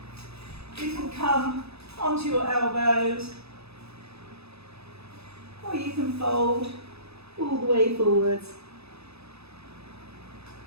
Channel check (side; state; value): left; late; 0.79 ms